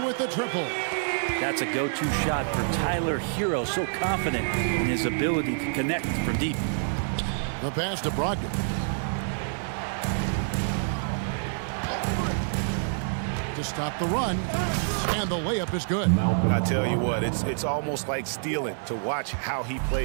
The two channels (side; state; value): left; silent; digital silence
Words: with the triple. That's a go-to shot for Tyler Hero, so confident in his ability to connect from deep. The pass to Brogdon. To stop the run, and the layup is good. I tell you what, it's almost like stealing to watch how he